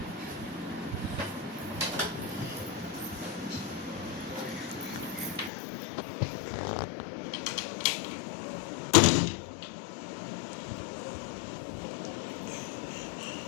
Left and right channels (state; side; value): drops out; right; at 5.5 s